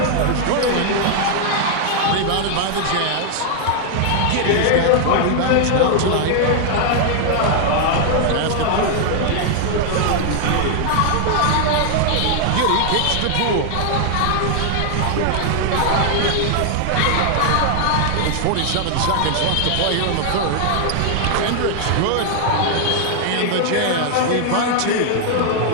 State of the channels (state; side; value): different; both; correlation 0.00